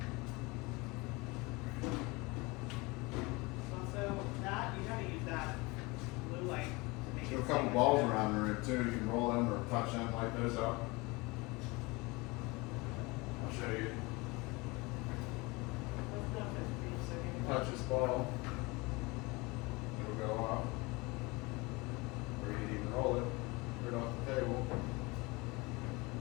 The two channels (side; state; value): right; quieter; 25.0 dB